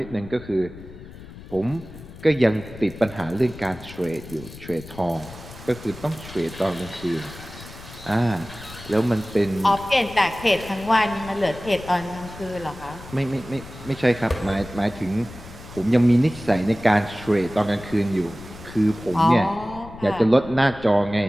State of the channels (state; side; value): noise; left; rumble, 16 dB below the sound